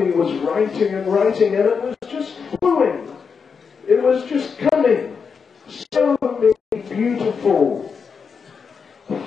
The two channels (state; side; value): quieter; right; 5.8 dB